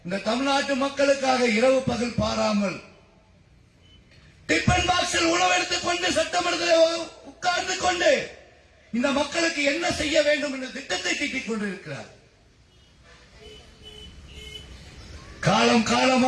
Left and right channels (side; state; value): both; identical; correlation 1.00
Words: இந்த தமிழ்நாட்டு மக்களுக்காக இரவு பகல் பாராமல் டிபன் பாக்ஸில் உணவு எடுத்துக் கொண்டு சட்டமன்றத்தில் உட்கார்ந்து கொண்டு இந்த மக்களுக்கு என்ன செய்ய வேண்டும் என்ற திட்டத்தை தீட்டிக் கொண்டிருக்கிறார். காலம்